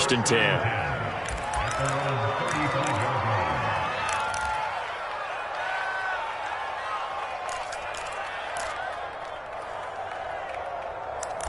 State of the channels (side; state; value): both; identical; correlation 1.00